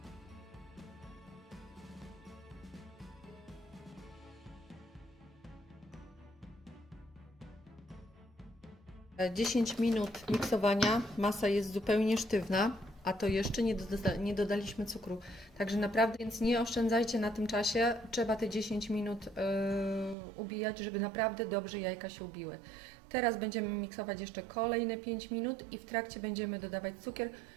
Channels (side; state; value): left; drops out; at 20.2 s